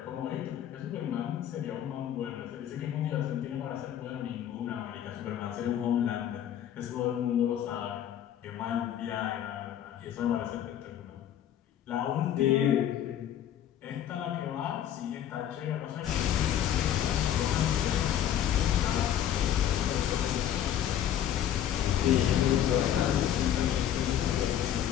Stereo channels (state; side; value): quieter; right; 10.6 dB